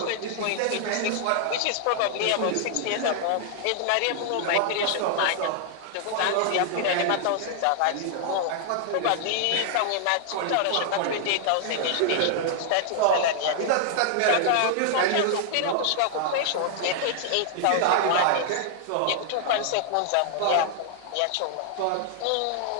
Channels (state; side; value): different; both; correlation -0.01